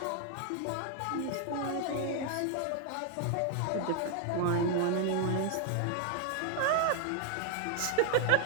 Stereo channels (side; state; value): both; different; correlation 0.00